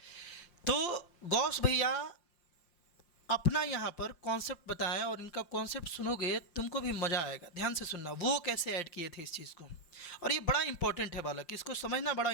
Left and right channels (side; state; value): right; late; 5.8 ms